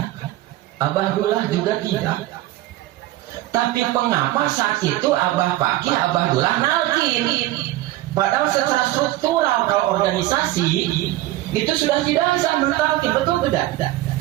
Abah Dullah juga tidak. Tapi mengapa saat itu Abah Fakih, Abah Dullah nalkin? Padahal secara struktural kalau organisasi itu sudah tidak bisa mentalkin, betul tidak?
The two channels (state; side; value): quieter; left; 16.3 dB